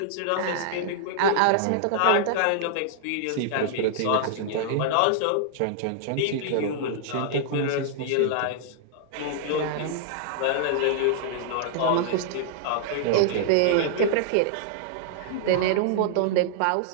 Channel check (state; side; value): different; both; correlation -0.01